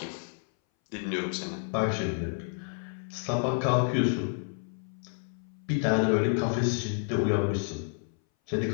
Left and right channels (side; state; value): right; silent; 58 dB below the other